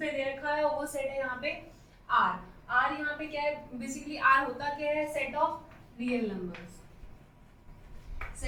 दे रखा है वो सेट है यहाँ पे आर यहाँ पे क्या है, बेसिकली आर होता क्या है, set of real numbers,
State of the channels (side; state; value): both; identical; correlation 1.00